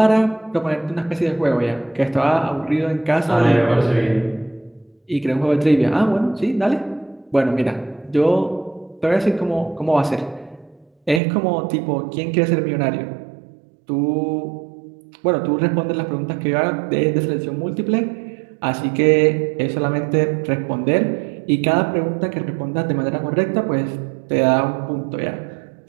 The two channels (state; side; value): drops out; left; at 11.2 s